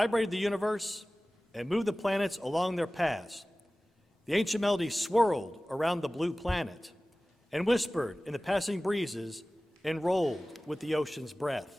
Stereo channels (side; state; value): both; normal; correlation 0.98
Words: the universe and moved the planets along their paths. The ancient melody swirled around the blue planet and whispered in the passing breezes and rolled with the ocean's